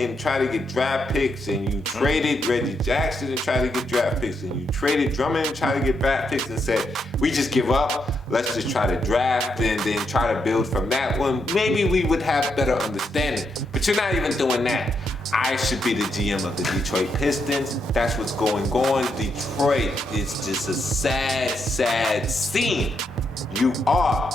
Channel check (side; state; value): both; normal; correlation 0.80